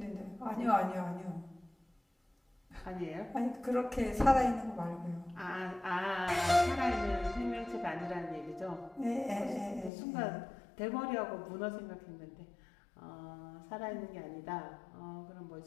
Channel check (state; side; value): drops out; right; at 9.9 s